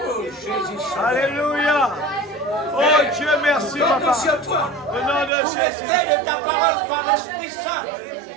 Alléluia. Oh Dieu, merci Papa. Au nom de Jésus. L'effet de ta parole par l'Esprit Saint,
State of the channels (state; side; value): drops out; left; at 5.3 s